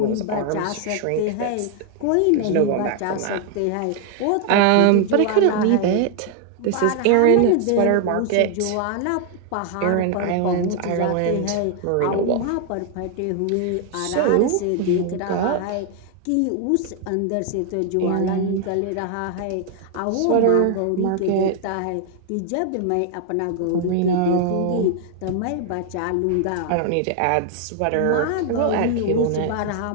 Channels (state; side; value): different; both; correlation 0.00